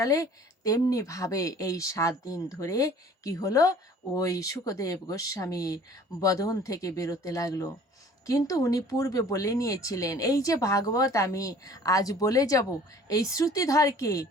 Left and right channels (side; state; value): both; normal; correlation 0.50